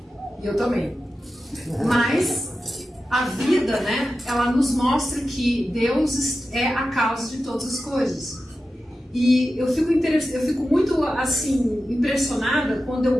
E eu também. Mas a vida, né? Ela nos mostra que Deus é a causa de todas as coisas. E eu fico muito assim impressionada quando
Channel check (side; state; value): both; normal; correlation 0.92